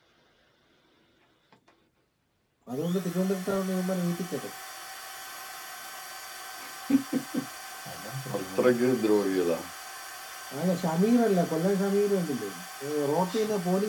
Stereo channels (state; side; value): identical; both; correlation 1.00